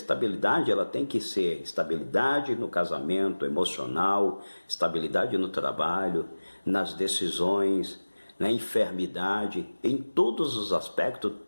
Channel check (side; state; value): both; inverted; correlation -1.00